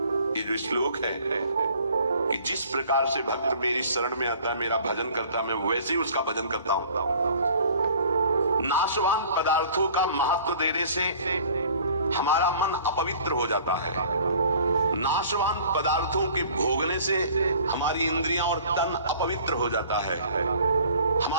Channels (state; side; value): inverted; both; correlation -0.50